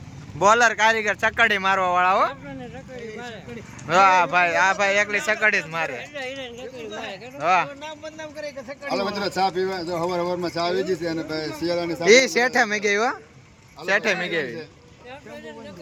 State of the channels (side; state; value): both; identical; correlation 1.00